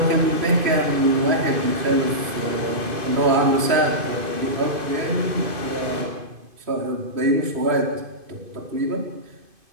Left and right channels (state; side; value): late; left; 2.5 ms